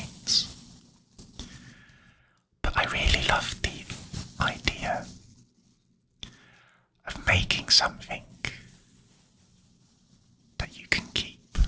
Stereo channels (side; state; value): both; identical; correlation 1.00